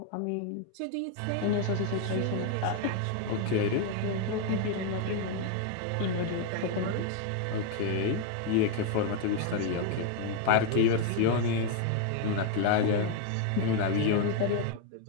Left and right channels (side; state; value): both; different; correlation 0.00